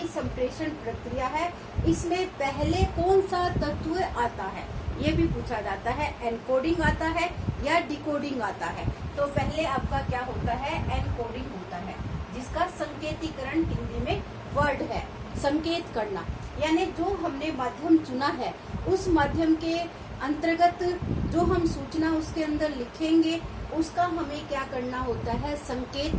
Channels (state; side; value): identical; both; correlation 1.00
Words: संप्रेषण प्रक्रिया है इसमें पहले कौन सा तत्व आता है, ये भी पूछा जाता है। एनकोडिंग आता है या डिकोडिंग आता है। तो पहले आपका क्या होता है? एनकोडिंग होता है, जिसका संकेतीकरण हिंदी में वर्ड है, संकेत करना। यानी जो हमने माध्यम चुना है उस माध्यम के अंतर्गत जो हम सूचना उसके अंदर लिखेंगे उसका हमें क्या करना होता है? संकेत